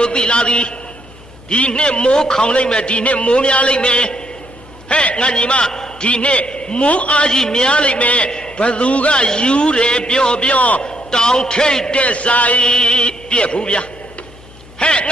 ိုသိလာသည်ဒီနှစ်မိုးခေါင်လိုက်မယ်ဒီနှစ်မိုးများလိုက်မယ်ဟဲ့ငါညီမဒီနှစ်မိုးအားကြီးများလိုက်မယ်ဘသူကယူတယ်ပြောတောင်ထိတ်တဲ့ဆိုင်ပြက်ဘူးဗျာဟဲ့င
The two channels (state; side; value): noise; left; hum, 22 dB below the sound